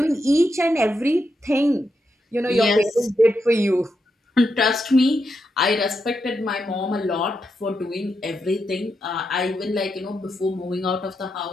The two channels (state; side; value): normal; both; correlation 0.84